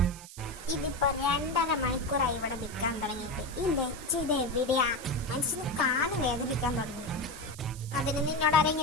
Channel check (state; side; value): noise; right; hiss, 16 dB below the sound